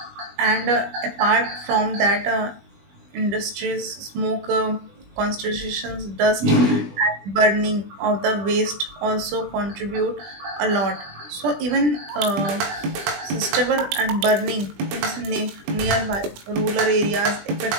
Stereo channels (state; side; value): late; left; 20 ms